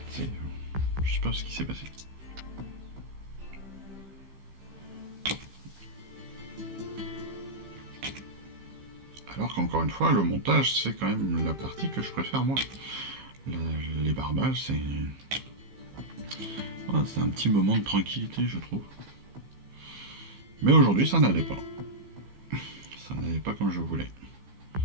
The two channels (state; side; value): late; left; 15 ms